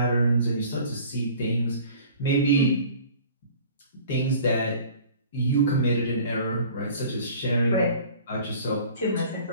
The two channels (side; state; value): both; inverted; correlation -0.48